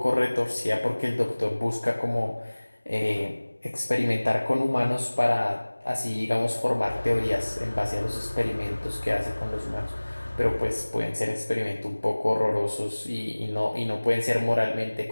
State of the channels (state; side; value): inverted; both; correlation -1.00